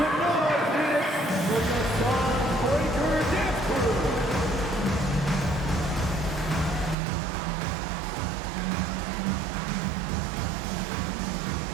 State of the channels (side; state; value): left; drops out; at 7.0 s